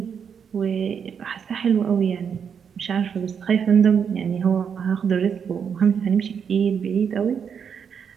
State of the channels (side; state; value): left; quieter; 7.1 dB